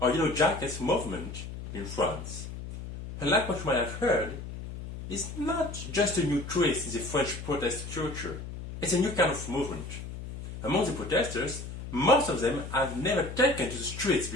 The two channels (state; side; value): noise; left; hum, 9 dB below the sound